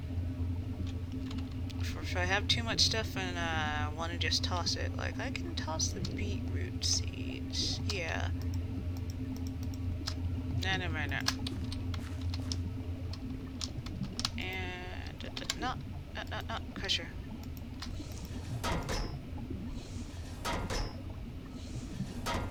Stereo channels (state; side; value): identical; both; correlation 1.00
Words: If I have too much stuff and I want to just toss it, like I can toss the beetroot seeds. Yeah. No. And no, crusher.